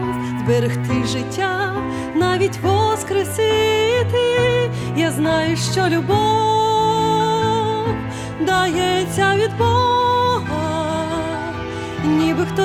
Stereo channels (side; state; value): both; identical; correlation 1.00